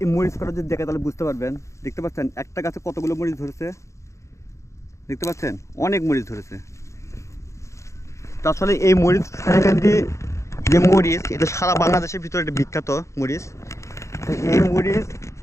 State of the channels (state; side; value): late; right; 0.14 ms